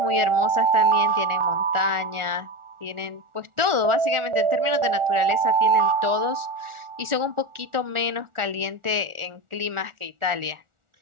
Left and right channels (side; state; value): left; late; 1.4 ms